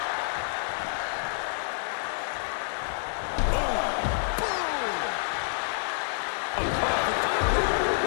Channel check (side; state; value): right; silent; digital silence